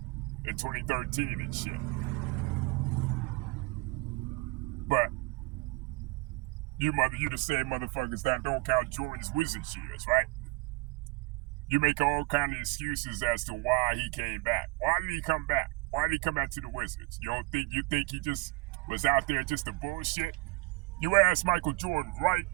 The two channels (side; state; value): left; quieter; 24.6 dB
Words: and 2013 and shit. But you the same motherfuckers that don't count Jordan's Wizards years, right? You make all kind of excuses as to why he came back. Why did he come back? Why did he come back to the Wizards? You think he just was out there just to bullshit? You ask Michael Jordan right